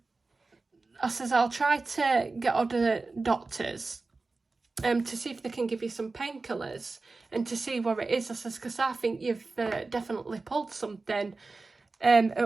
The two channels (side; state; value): left; quieter; 3.7 dB